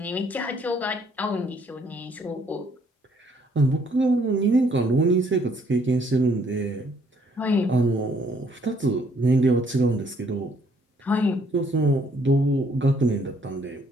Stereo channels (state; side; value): normal; both; correlation 0.65